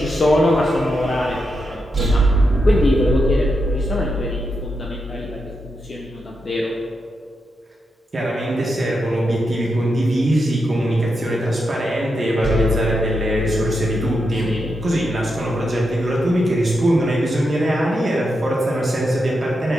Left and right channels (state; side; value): normal; both; correlation 0.85